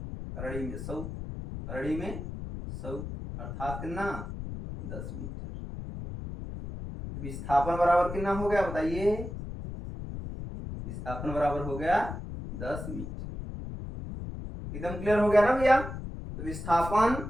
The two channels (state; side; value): noise; left; rumble, 8 dB below the sound